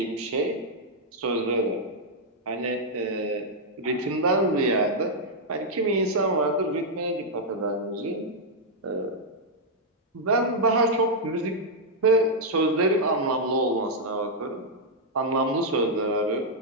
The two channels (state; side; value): normal; both; correlation -0.04